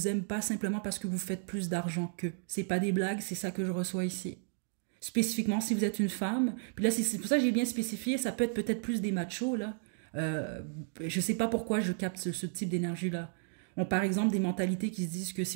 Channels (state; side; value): silent; left; 56 dB below the other